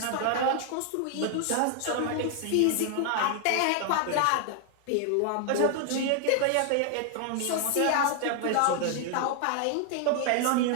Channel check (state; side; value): different; both; correlation 0.00